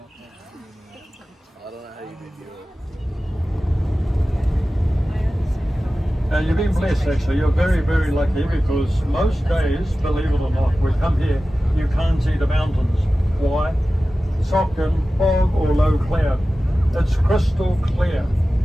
You've been blessed actually, you're very, very lucky because most days, believe it or not, we come here, you can't see the mountains. Why? Sock and fog or low cloud. It's crystal clear.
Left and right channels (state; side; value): normal; both; correlation 0.95